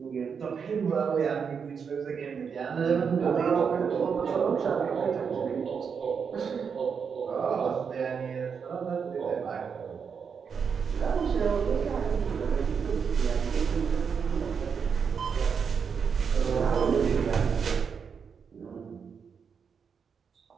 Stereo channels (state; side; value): quieter; left; 6.4 dB